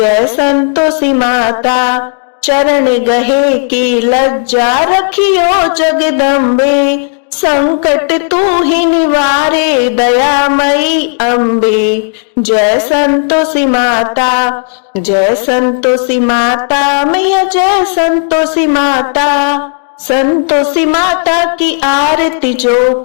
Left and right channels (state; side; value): silent; right; digital silence